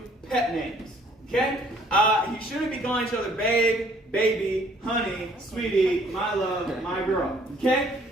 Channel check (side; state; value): both; normal; correlation 0.60